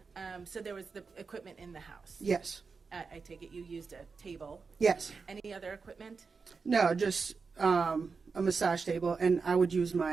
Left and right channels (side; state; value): left; quieter; 4.9 dB